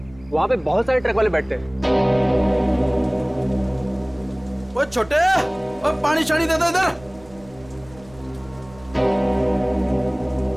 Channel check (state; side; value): noise; right; rumble, 23 dB below the sound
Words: वहाँ पे बहुत सारे ट्रक वाले बैठते हैं। वो छोटे, वो पानी शानी दे दो इधर।